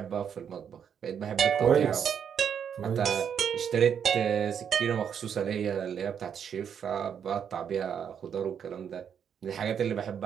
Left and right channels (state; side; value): quieter; left; 7.9 dB